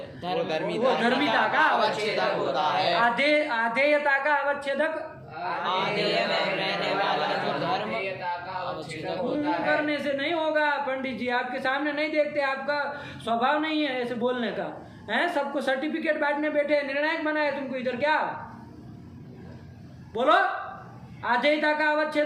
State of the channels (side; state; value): both; identical; correlation 1.00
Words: वो धर्मिता का अवच्छेदक होता है। आधेयता का अवच्छेदक आधेय में रहने वाला जो धर्म का अवच्छेदक होता है। करने से नहीं होगा पंडित जी, आपके सामने नहीं देखते, आपका स्वभाव नहीं है ऐसे बोलने का है। सबको सर्टिफिकेट बांटने बैठे, निर्णायक बनाए तुमको इधर, क्या बोलो? आधेयता का